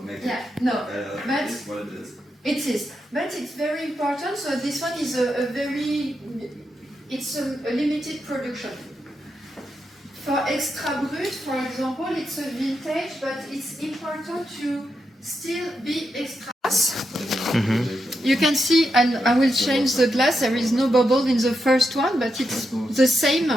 It is, but it's very important. So this one is a limited production. For extra brut, for example, it's a vintage, but it's important to still be extra. You can see, and I will change the glass. There is no bubble in the first one, but it's the same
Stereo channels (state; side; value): normal; both; correlation 0.84